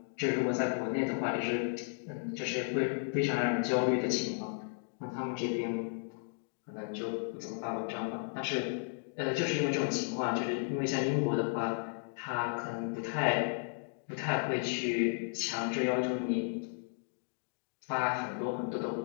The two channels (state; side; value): silent; right; 55 dB below the other